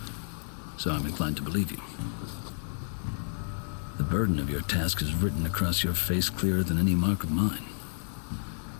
So I'm inclined to believe you. The burden of your task is written across your face clearer than any mark of mine.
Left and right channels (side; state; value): right; silent; digital silence